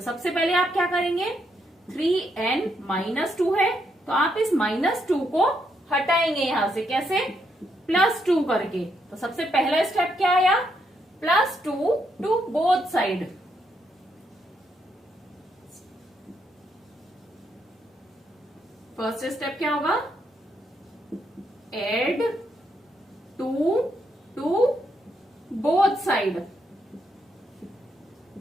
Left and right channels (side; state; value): both; normal; correlation 0.77